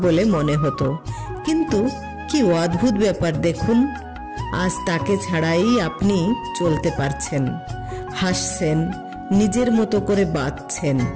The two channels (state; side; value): identical; both; correlation 1.00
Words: বলে মনে হতো। কিন্তু কি অদ্ভুত ব্যাপার দেখুন, আজ তাকে ছাড়াই আপনি চলতে পারছেন, হাসছেন, নিজের মতো করে বাঁচছেন।